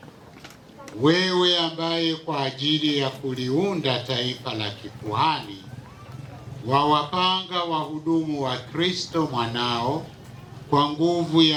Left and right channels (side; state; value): both; identical; correlation 1.00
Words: Wewe ambaye kwa ajili ya kuliunda taifa la kikuhani wawapanga wahudumu wa Kristo mwanao kwa nguvu